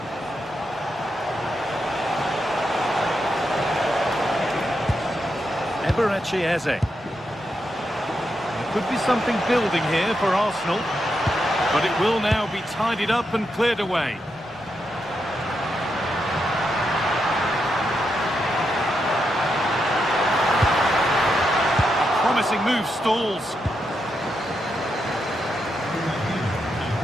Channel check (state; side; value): normal; both; correlation 0.84